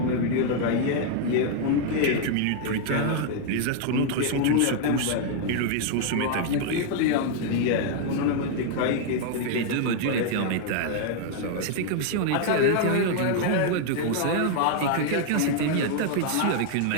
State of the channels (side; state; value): both; different; correlation 0.00